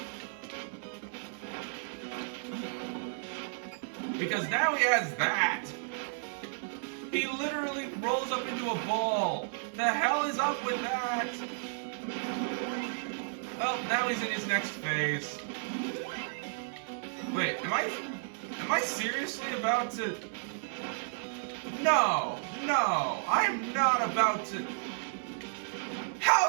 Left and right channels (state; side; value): silent; left; digital silence